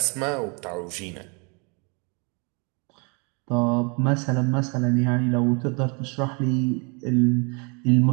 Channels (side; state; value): left; quieter; 32.9 dB